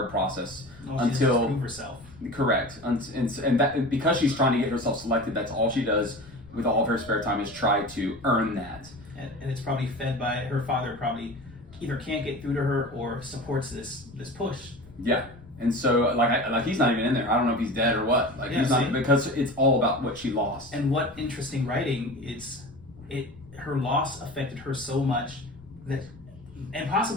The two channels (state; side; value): noise; left; rumble, 23 dB below the sound